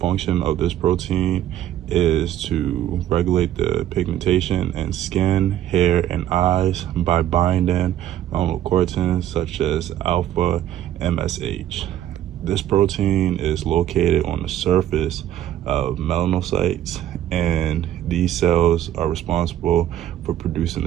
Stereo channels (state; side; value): quieter; left; 11.8 dB